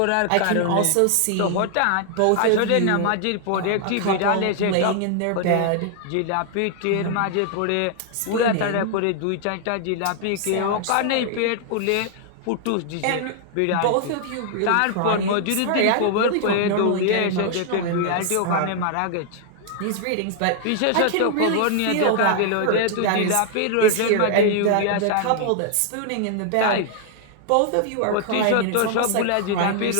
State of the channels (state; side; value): different; both; correlation 0.00